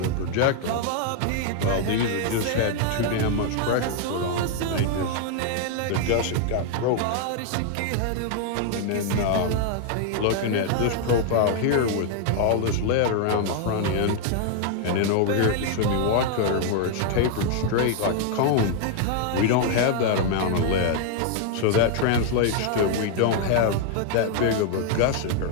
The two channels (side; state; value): both; different; correlation 0.00